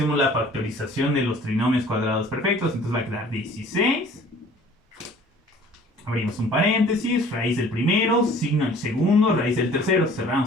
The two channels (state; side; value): normal; both; correlation 0.51